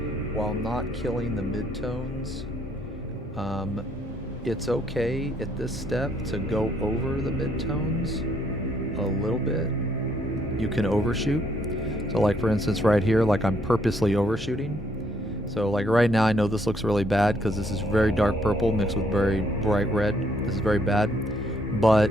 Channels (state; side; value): normal; both; correlation 0.69